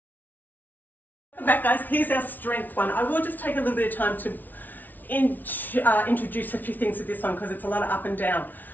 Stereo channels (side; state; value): right; late; 0.083 ms